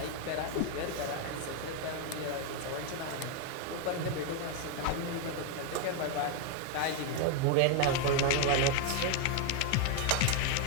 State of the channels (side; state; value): both; different; correlation 0.01